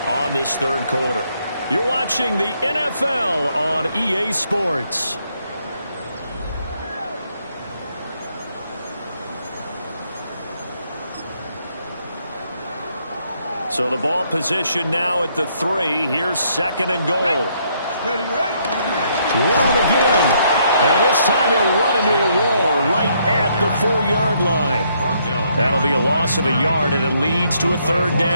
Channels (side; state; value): both; inverted; correlation -0.72